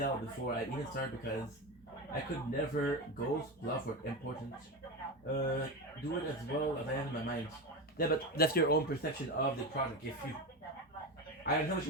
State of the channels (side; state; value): both; normal; correlation 0.19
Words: before I even started because I could never ghost, bluff, or important. Do it as well as I have in my mind. Yeah, but that's your own perception of the project. If you, I don't know what